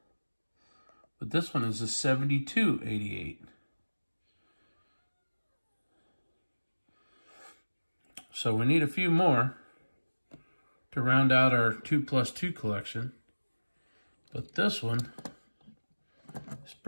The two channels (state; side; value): inverted; both; correlation -1.00